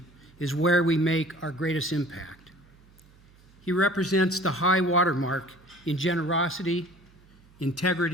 is where we make our greatest impact. He represents the high watermark in generosity,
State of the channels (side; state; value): right; noise; hum, 27 dB below the sound